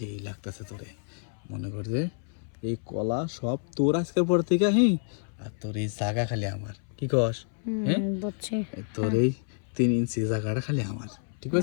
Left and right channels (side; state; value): right; silent; 58 dB below the other